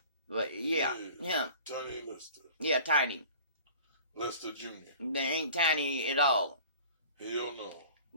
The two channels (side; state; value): both; inverted; correlation -0.45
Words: But yeah, him. Tiny Lister. Yeah, Tiny. Lister Jr. They ain't tiny at all. Hell no.